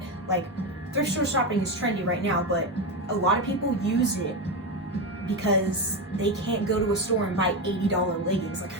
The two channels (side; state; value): both; normal; correlation 0.14